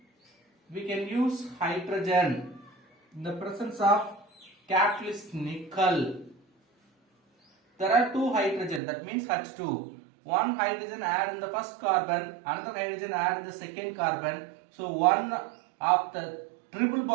we can use hydrogen in the presence of catalyst nickel. There are 2 hydrogen, that means H2. 1 hydrogen add in the first carbon, another hydrogen add in the second carbon. So one of the triple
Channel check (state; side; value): drops out; left; at 8.8 s